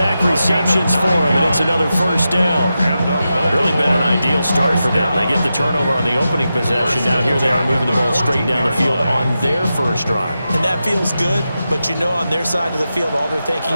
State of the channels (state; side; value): inverted; both; correlation -0.90